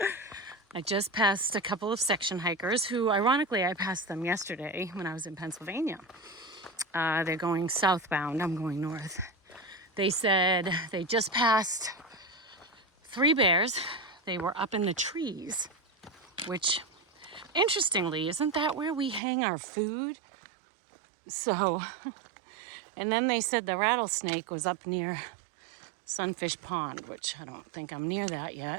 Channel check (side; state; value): left; drops out; at 19.2 s